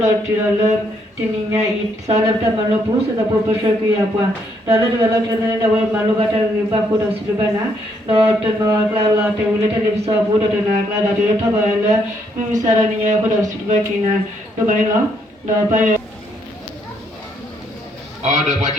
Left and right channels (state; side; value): normal; both; correlation 0.72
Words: la tirala tininya it sala ta malo pu sa po pasha ku ya pa dala dala tena da wal malo bata ba ko da silbana do to no kla la te ule te lipsa bu do na kla da de ta ba la mi sara ni ya ko da silba kina do ba no do pa oh da pa